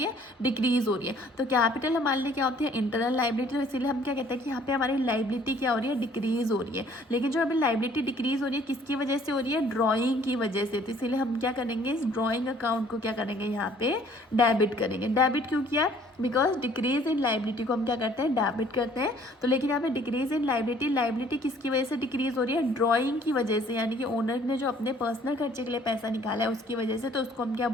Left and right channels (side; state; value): both; normal; correlation 0.57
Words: है, डिक्रीज हो रही है। तो कैपिटल हमारे लिए क्या होती है, इंटरनल लाइबिलिटी। तो इसीलिए हम क्या कहते हैं कि यहाँ पे हमारी लाइबिलिटी क्या हो रही है, डिक्रीज हो रही है। लेकिन जो अभी लाइबिलिटी डिक्रीज हो रही है, किसकी वजह से हो रही है, ड्राइंग की वजह से। तो इसीलिए हम क्या करेंगे, इस ड्राइंग अकाउंट को क्या करेंगे, यहाँ पे डेबिट करेंगे। डेबिट क्यों किया, बिकॉज डिक्रीज इन लाइबिलिटी को हम क्या करते हैं, डेबिट करते हैं। तो लेकिन यहाँ पे डिक्रीज इन लाइबिलिटी, लाइबिलिटी किसकी वजह से डिक्रीज हो रही है, ड्राइंग की वजह से, यानी कि ओनर ने जो अपने पर्सनल खर्चे के लिए पैसा निकाला है उसकी वजह से। तो उसको हम क्या